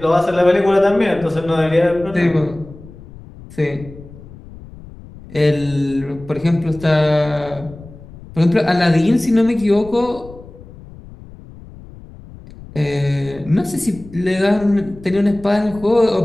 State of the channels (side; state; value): left; noise; rumble, 18 dB below the sound